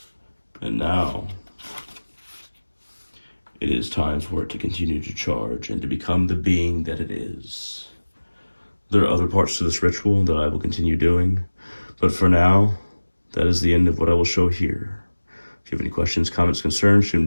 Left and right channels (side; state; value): both; inverted; correlation -1.00